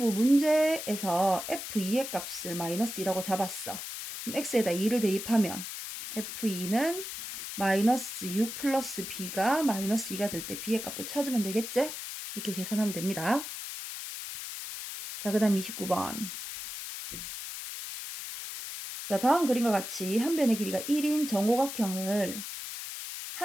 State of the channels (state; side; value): noise; left; hiss, 8 dB below the sound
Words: 문제에서 f2의 값을 마이너스 2라고 잡았어. 그럼 x에다 2를 대입하면 f2는 마이너스 6 플러스 b가 마이너스 2가 될 때 b의 값도 찾으면 되겠지? 이렇게 계산하면 됩니다. 자, 그 다음 29번. 자, 다음 그림과 같이 한 변의 길이가 1인 정오각형을